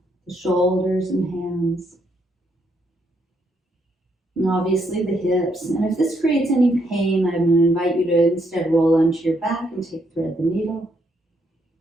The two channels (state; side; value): normal; both; correlation 0.75